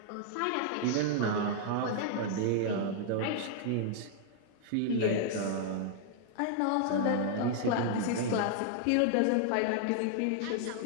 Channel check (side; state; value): both; different; correlation -0.01